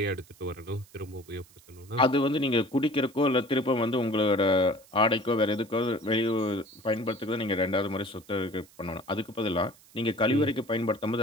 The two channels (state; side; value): noise; right; hiss, 26 dB below the sound